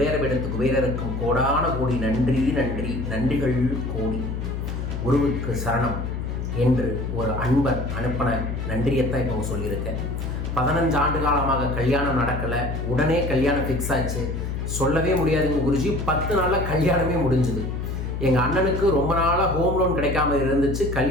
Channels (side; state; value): left; noise; hum, 4 dB below the sound